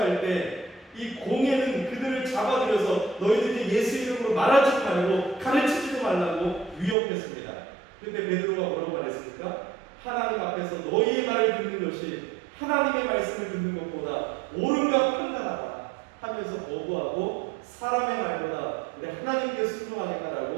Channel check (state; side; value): drops out; left; at 7.0 s